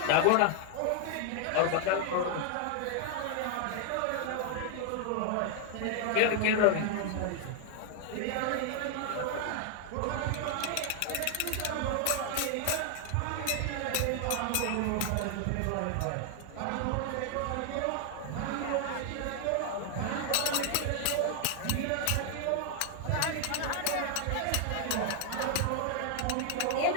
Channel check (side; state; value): both; different; correlation 0.00